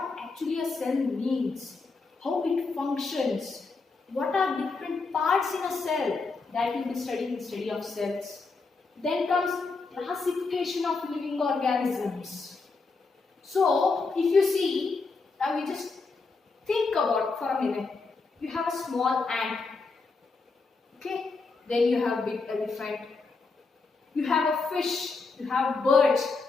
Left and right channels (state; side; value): quieter; right; 4.1 dB